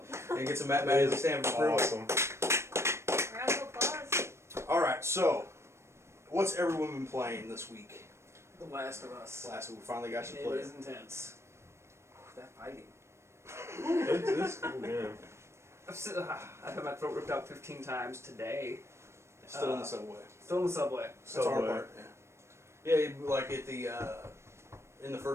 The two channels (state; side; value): late; left; 0.13 ms